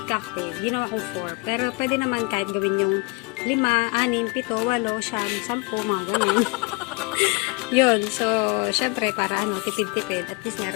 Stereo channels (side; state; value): right; quieter; 28.7 dB